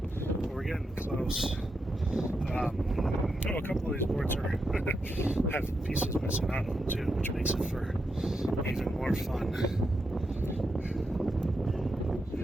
We're getting close. A couple of these boards have pieces missing out of them too, which makes it for even more fun.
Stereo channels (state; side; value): normal; both; correlation 0.85